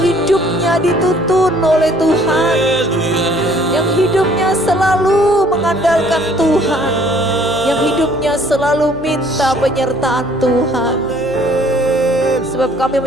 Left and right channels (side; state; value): left; noise; hum, 21 dB below the sound